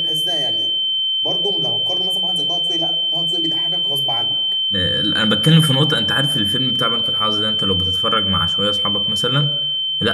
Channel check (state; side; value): identical; both; correlation 1.00